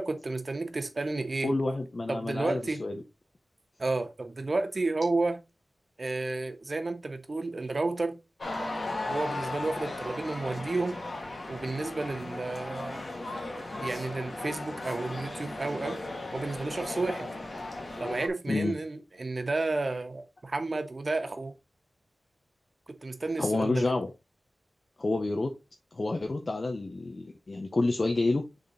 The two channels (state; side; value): normal; both; correlation 0.95